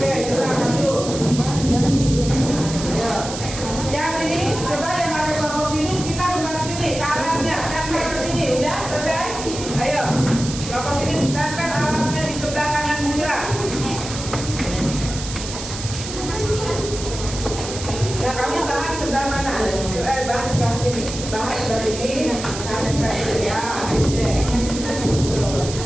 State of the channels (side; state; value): right; noise; hiss, 9 dB below the sound